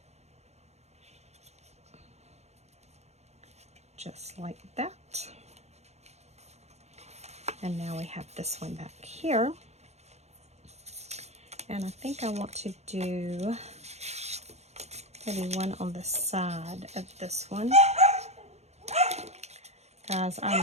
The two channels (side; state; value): left; late; 0.32 ms